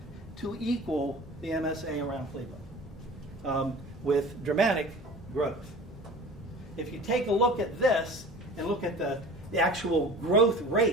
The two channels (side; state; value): both; normal; correlation 0.41